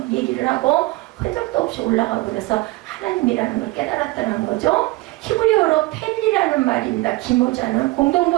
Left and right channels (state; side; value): quieter; left; 21.1 dB